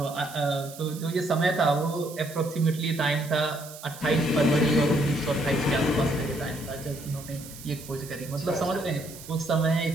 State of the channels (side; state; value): right; noise; hiss, 16 dB below the sound